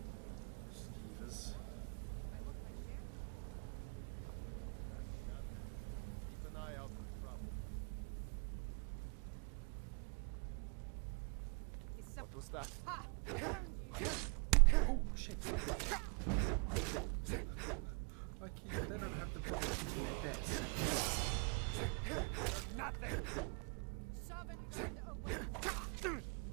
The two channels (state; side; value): quieter; left; 35.6 dB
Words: Skeevers. Keep an eye out for trouble. What was that? Oh shit! Like they don't have the problem hitting their desk. Nothing! Sovngarde away!